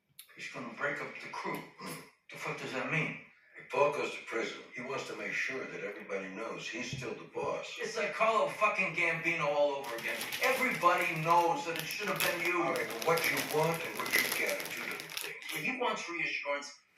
He's gonna break up the crew. The fuck does that mean? If Paul goes to prison, he wants to make sure that everybody knows he's still the boss. It's like Carlo fucking Gambino all over again. Everybody knows that it should have been you. All right, but what you want and what you get are two different things. If he wants reassurance,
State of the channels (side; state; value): both; identical; correlation 1.00